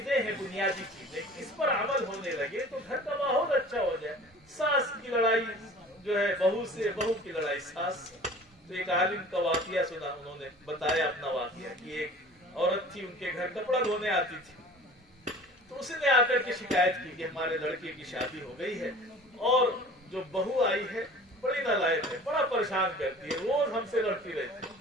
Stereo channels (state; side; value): normal; both; correlation 0.44